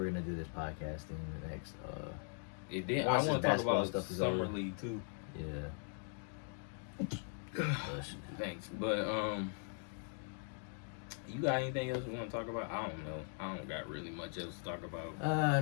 gonna do this podcasting in the next. It did. Once I want the to talk basketball about stuff is summer over. league too. Yeah. Thanks, but you got anything else you want to talk about? I don't know. I don't got really much else to talk about.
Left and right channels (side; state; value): right; silent; 51 dB below the other